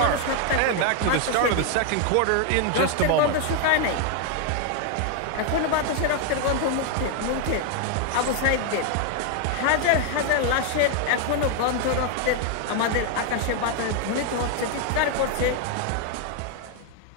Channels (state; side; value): different; both; correlation 0.00